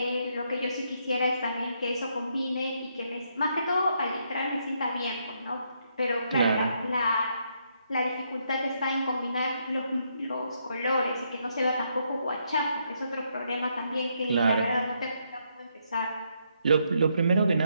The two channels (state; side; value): inverted; both; correlation -0.76